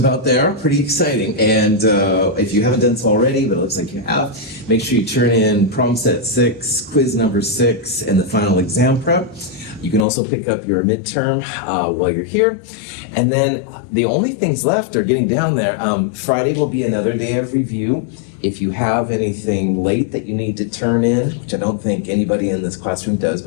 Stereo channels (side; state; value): right; drops out; at 10.1 s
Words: there, pretty exciting. And if you haven't done so already, but it looks like you have, make sure you turn in problem set 6, quiz number 6, and the final exam prep. You can also pick up your midterm while you're here. And then the only things left are getting down there. Friday will be another day of review. If you have anything late that you need to turn in, which I don't think anybody in this classroom does,